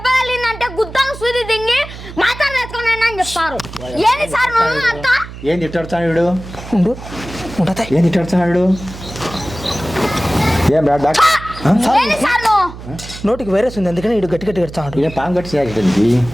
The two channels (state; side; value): noise; right; hum, 13 dB below the sound